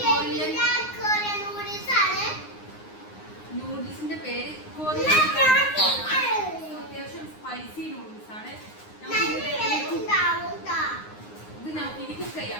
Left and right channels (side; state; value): right; late; 9.6 ms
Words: നൂഡിൽസിന്റെ പേര് കൊറിയൻ. അത്യാവശ്യം സ്പൈസി നൂഡിൽസ് ആണ്. ഇത് നമുക്ക് ഇനി കുക്ക്